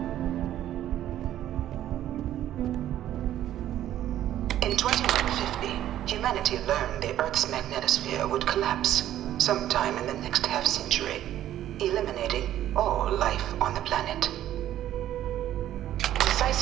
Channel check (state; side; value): quieter; left; 12.3 dB